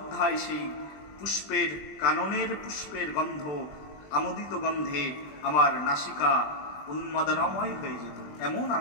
সেই পুষ্পের, কাননের পুষ্পের গন্ধ, আমোদিত গন্ধে আমার নাসিকা উন্মাদনাময় হয়ে যেত। এমন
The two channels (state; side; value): late; right; 20 ms